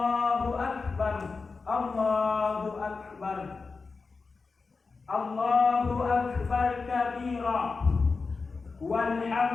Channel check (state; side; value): quieter; right; 4.4 dB